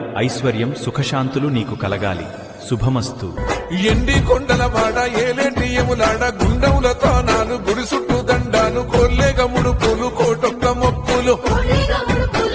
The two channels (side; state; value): both; identical; correlation 1.00